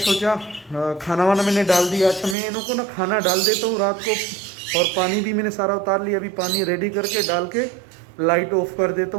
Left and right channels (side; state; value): left; drops out; at 2.4 s